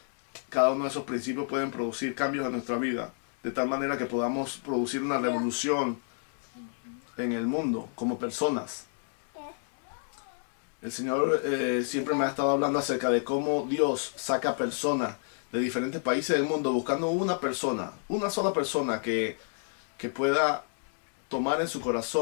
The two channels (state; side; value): silent; right; 58 dB below the other